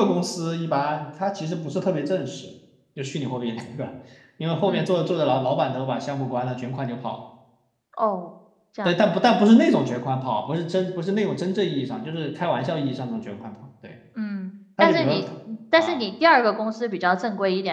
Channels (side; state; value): both; identical; correlation 1.00